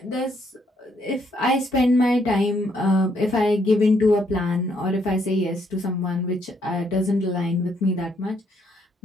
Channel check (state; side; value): normal; both; correlation 0.72